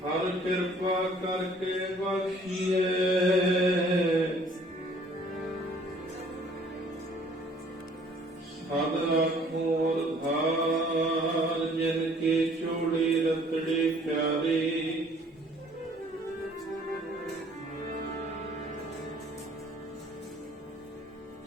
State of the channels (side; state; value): both; normal; correlation 0.57